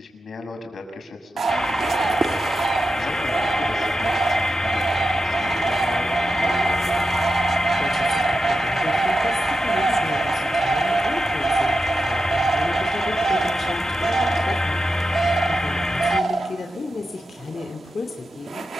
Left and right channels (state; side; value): normal; both; correlation 0.89